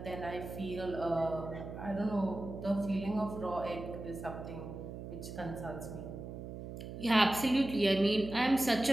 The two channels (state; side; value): noise; right; hum, 9 dB below the sound